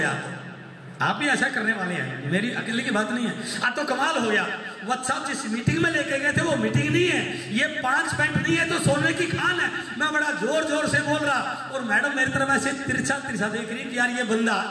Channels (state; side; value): identical; both; correlation 1.00